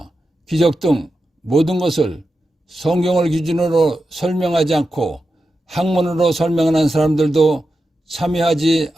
기적 등 모든 것을 성경을 기준으로 설명하지 않고 학문으로 설명하는 사람들도 참여하지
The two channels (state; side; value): normal; both; correlation 0.90